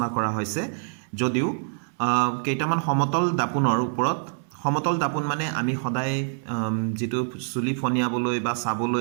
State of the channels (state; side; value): silent; left; 61 dB below the other